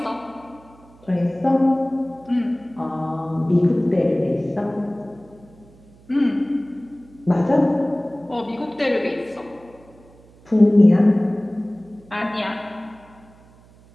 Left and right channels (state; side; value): noise; right; hum, 26 dB below the sound